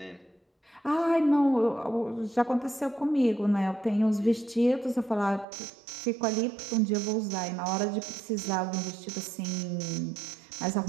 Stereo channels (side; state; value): left; drops out; at 5.5 s